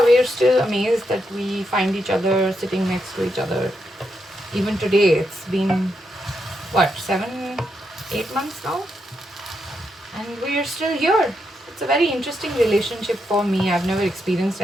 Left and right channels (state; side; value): normal; both; correlation 0.82